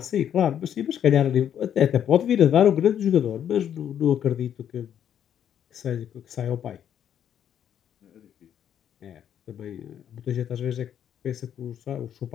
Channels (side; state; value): right; quieter; 9.5 dB